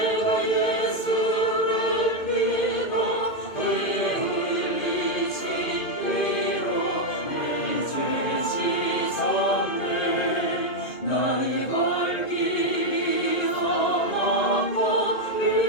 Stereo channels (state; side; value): late; right; 2.5 ms